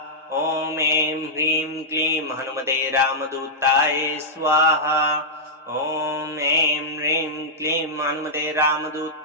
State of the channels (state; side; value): normal; both; correlation -0.08